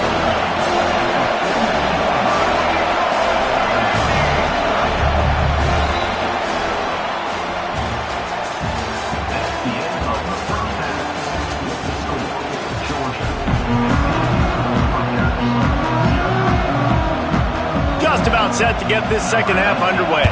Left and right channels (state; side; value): identical; both; correlation 1.00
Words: Just about set to get this second half underway.